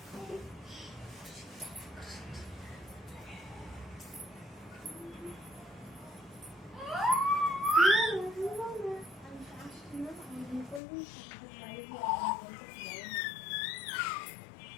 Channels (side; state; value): right; drops out; at 10.8 s